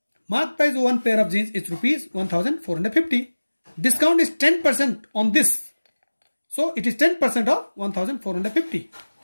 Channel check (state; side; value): inverted; both; correlation -1.00